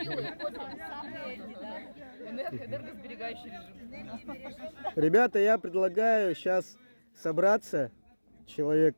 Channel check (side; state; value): both; inverted; correlation -1.00